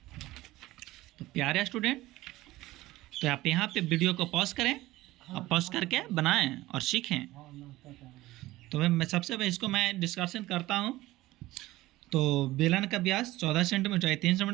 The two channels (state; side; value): quieter; left; 17.6 dB